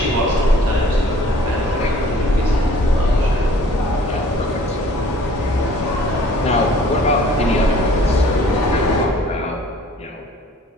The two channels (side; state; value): both; normal; correlation 0.53